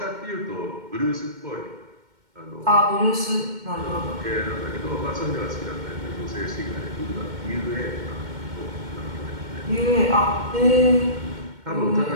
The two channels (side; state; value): left; late; 2.1 ms